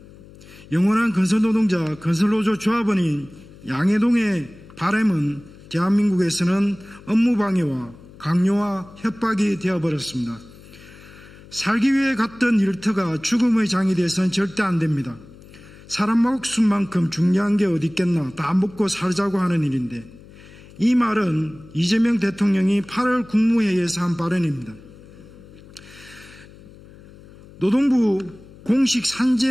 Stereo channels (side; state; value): left; noise; hum, 21 dB below the sound